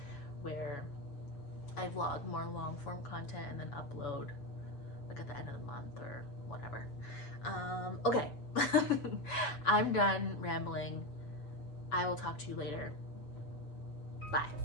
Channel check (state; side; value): late; right; 7.0 ms